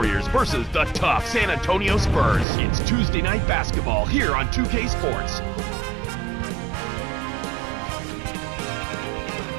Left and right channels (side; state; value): left; drops out; at 2.5 s